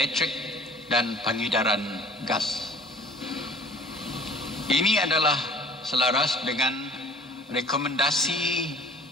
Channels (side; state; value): both; normal; correlation 0.49